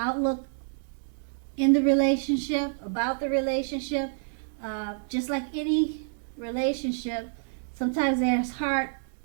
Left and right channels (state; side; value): silent; left; 59 dB below the other